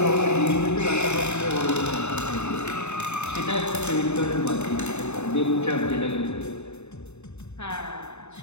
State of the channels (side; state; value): right; late; 0.82 ms